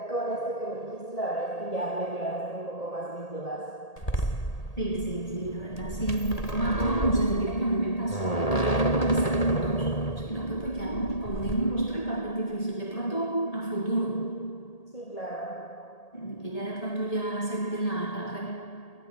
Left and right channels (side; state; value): right; late; 1.8 ms